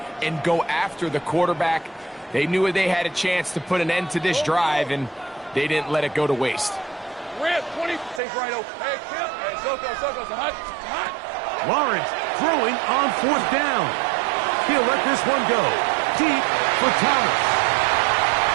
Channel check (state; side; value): drops out; left; at 8.2 s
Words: and go after the quarterback. They knew they had a chance to put an end to this drive, and they didn't let it go to waste. Rip, 20. Take right over. Hey, Kip. Hey, Soko. Hot. Lawrence throwing on 4th down. He'll let this one go. Deep for Thomas.